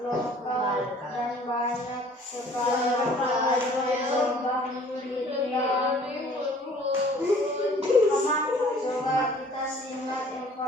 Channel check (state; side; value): normal; both; correlation 0.53